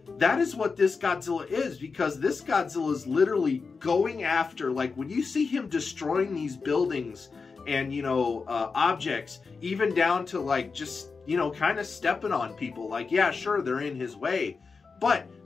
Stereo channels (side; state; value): right; quieter; 4.8 dB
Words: That is what this Godzilla is, because this Godzilla is literally going after, like, when you see him destroying these buildings and, you know, objects, even down to, like, just, you know, kind of stepping on people. Like, yeah, sure, they're in his way,